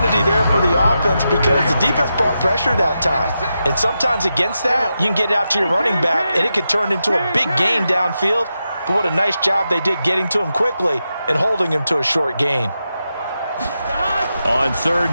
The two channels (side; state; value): both; inverted; correlation -0.88